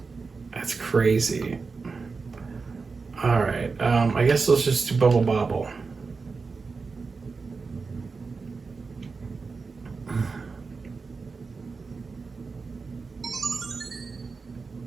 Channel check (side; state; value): left; quieter; 4.5 dB